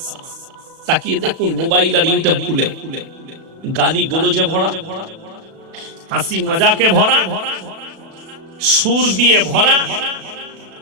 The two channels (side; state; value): left; late; 36 ms